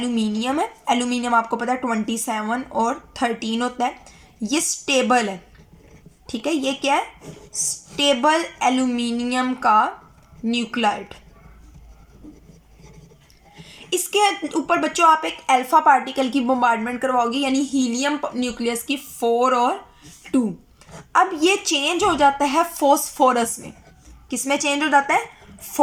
है। एल्यूमिनियम आपको पता है 27 और 13 होता है, ये स्टेबल है। ठीक है, ये क्या है, स्टेबल एल्यूमिनियम का न्यूक्लाइड। इसके ऊपर बच्चों आप एक अल्फा पार्टिकल की बम्बार्डमेंट करवाओगे, यानी हीलियम न्यूक्लियस की 4 और 2। अब ये चेंज हो जाता है फॉस्फोरस में। किस में चेंज हो जाता है,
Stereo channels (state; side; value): identical; both; correlation 1.00